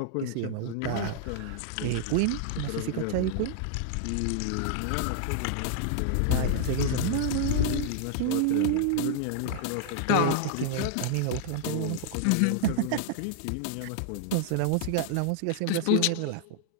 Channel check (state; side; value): different; both; correlation -0.01